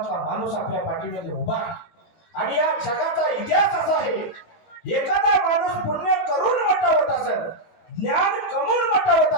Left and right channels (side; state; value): right; late; 18 ms